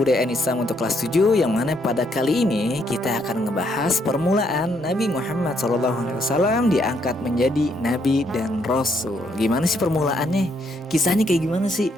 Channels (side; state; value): both; normal; correlation 0.72